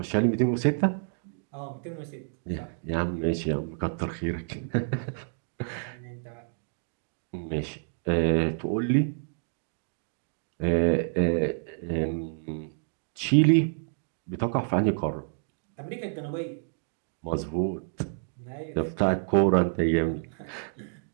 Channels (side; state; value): left; silent; digital silence